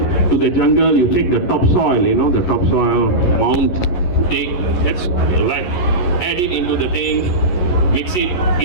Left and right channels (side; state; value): right; late; 11 ms